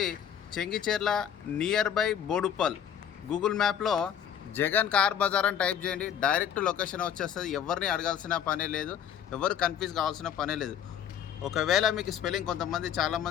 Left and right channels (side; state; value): right; quieter; 9.1 dB